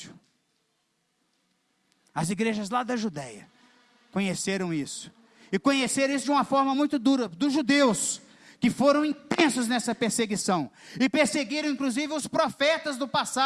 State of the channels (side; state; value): both; identical; correlation 1.00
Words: as igrejas lá da Judéia, conheceram isso. E conheceram isso de uma forma muito dura, dos judeus, que foram intensos nessa perseguição, e perseguiram inclusive os profetas do